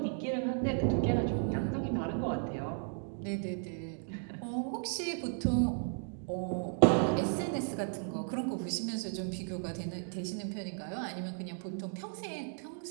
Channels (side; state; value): left; silent; 55 dB below the other